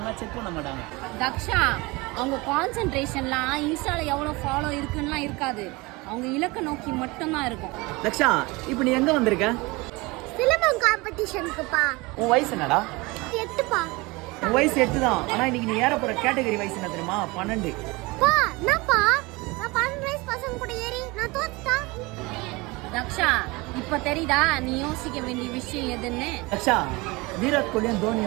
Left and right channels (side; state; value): left; quieter; 24.0 dB